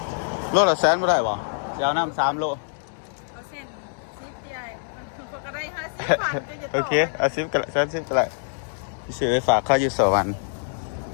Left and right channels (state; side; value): silent; right; digital silence